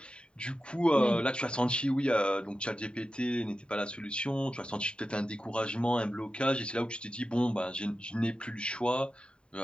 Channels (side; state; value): right; late; 0.052 ms